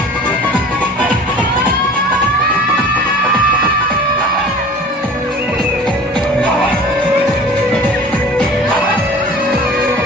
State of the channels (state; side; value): normal; both; correlation 0.43